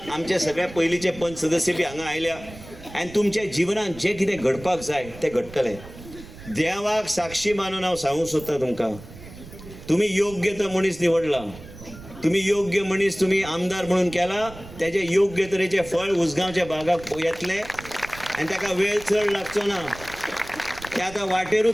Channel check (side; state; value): right; noise; rumble, 17 dB below the sound